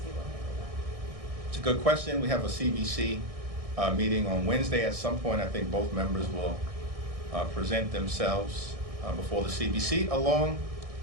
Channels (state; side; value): late; left; 1.6 ms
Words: will handle that? It's a good question. We have a CBC meeting on Wednesday. At some point, I think both members will present themselves before the CBC, along